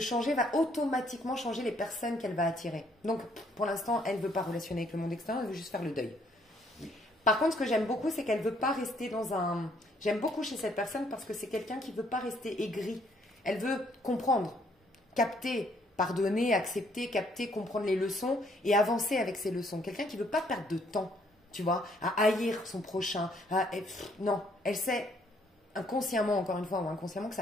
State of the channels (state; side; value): normal; both; correlation 0.67